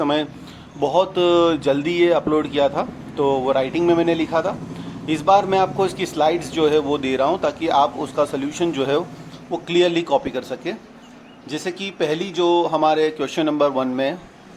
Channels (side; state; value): both; identical; correlation 1.00